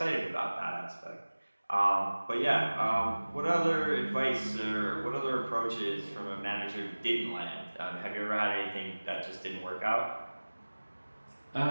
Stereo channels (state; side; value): inverted; both; correlation -1.00